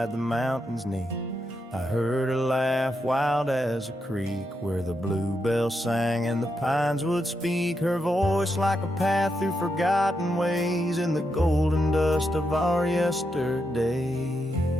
the mountains neath. I heard her laugh wild as a creek, where the bluebell sang and the pines would speak. Her voice like a path through forgotten ways, in the golden dust of our yesterdays.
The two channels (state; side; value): normal; both; correlation 0.83